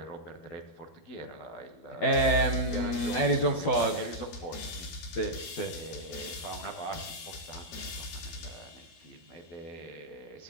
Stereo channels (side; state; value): right; late; 12 ms